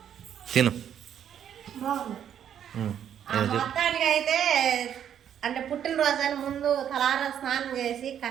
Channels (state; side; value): quieter; left; 9.4 dB